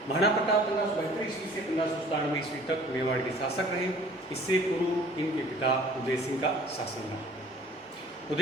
महाराणा प्रताप 1572 ईस्वी से 1597 ईस्वी तक मेवाड़ के शासक रहे। इससे पूर्व इनके पिता उदय सिंह का शासन रहा।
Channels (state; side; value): normal; both; correlation 0.50